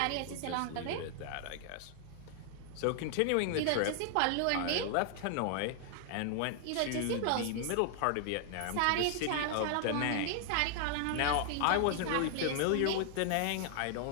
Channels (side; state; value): both; different; correlation 0.00